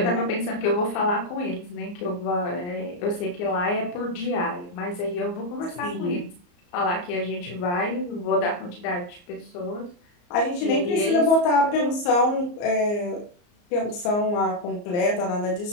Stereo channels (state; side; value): late; right; 34 ms